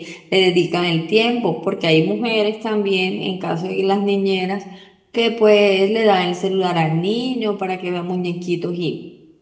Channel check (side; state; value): both; identical; correlation 1.00